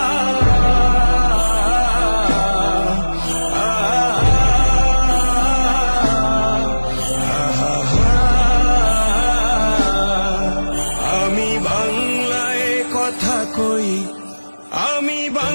আমি বাংলায় কথা কই, আমি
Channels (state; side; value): inverted; both; correlation -1.00